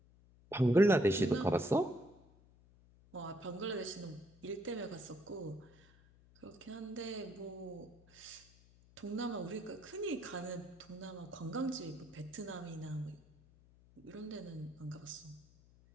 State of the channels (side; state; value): left; noise; hum, 26 dB below the sound